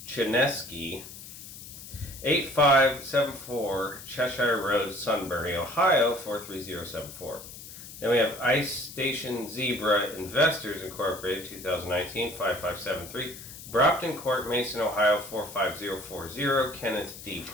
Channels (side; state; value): left; noise; hiss, 14 dB below the sound